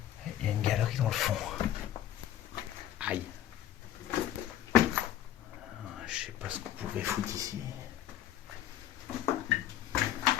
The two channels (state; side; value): quieter; right; 12.1 dB